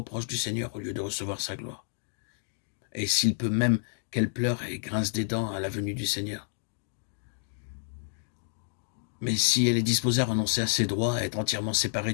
du Seigneur au lieu de recevoir sa gloire. Et s'il peut même qu'elle pleure et grince des dents à la venue du Seigneur. Mais si elle est disposée à renoncer à ses droits, à être entièrement séparée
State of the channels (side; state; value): right; silent; 58 dB below the other